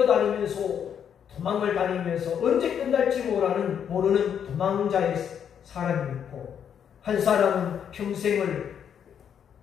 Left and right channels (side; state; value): right; quieter; 8.3 dB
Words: 도망을 다니면서 언제 끝날지 모르는 도망자의 사람이 있고, 한 사람은 평생을